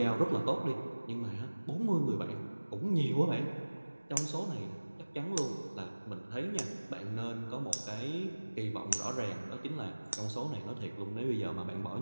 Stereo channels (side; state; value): both; inverted; correlation -1.00